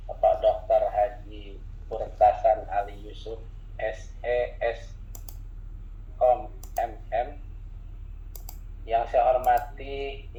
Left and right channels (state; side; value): identical; both; correlation 1.00